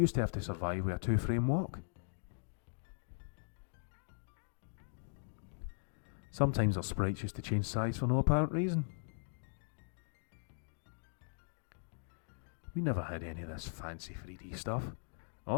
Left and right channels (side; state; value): right; silent; digital silence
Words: to have to survive with a 2-frame walk. Sometimes our sprites used to change size for no apparent reason. We never had any of this fancy 3D stuff.